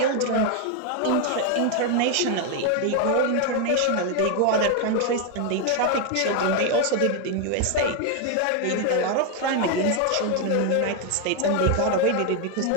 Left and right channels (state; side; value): different; both; correlation 0.01